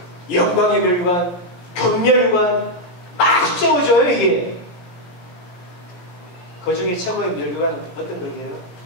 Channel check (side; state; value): right; late; 17 ms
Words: 영광의 면류관, 경면류관 막 세워져요 이게. 그 중에 최고의 면류관은 어떤 거예요?